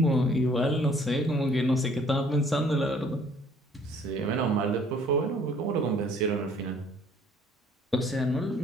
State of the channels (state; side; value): normal; both; correlation 0.58